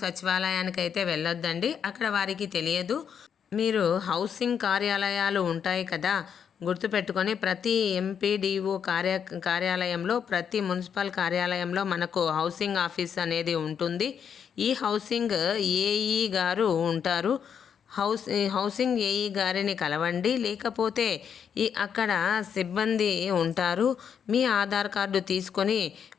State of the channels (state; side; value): quieter; right; 7.7 dB